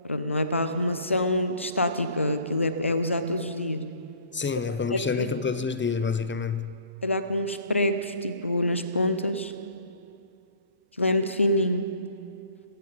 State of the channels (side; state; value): both; inverted; correlation -0.50